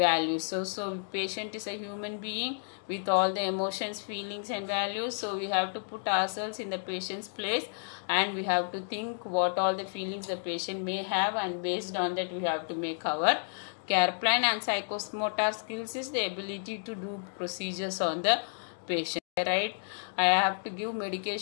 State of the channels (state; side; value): silent; right; digital silence